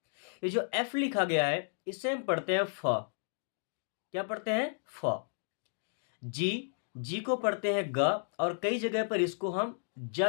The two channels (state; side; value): silent; right; digital silence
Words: ये जो एफ लिखा गया है इससे हम पढ़ते हैं फ। क्या पढ़ते हैं? फ। जी, जी को पढ़ते हैं ग, और कई जगह पर इसको हम